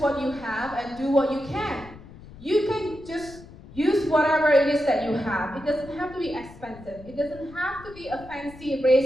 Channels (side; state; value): left; noise; rumble, 18 dB below the sound